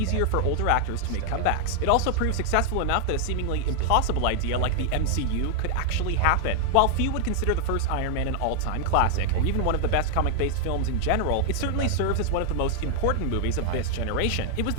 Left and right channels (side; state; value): both; different; correlation 0.00